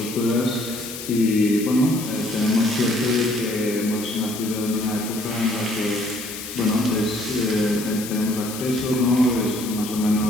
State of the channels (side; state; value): left; noise; hiss, 10 dB below the sound